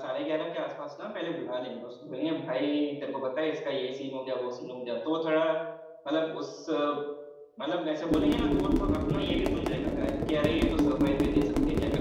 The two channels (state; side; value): identical; both; correlation 1.00